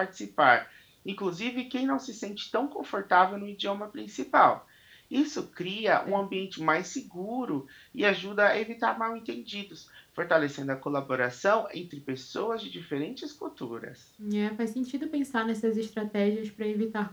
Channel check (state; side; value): identical; both; correlation 1.00